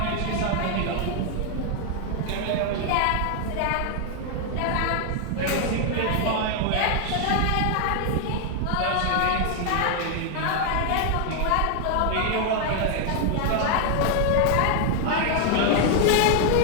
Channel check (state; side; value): different; both; correlation 0.00